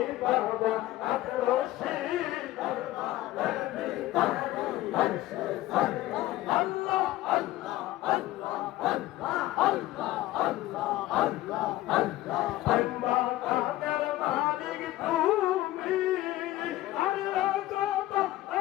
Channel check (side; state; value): right; quieter; 16.2 dB